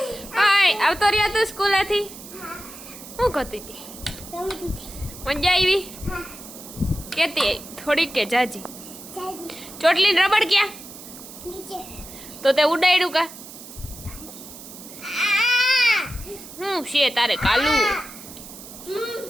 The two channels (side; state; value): right; noise; hiss, 15 dB below the sound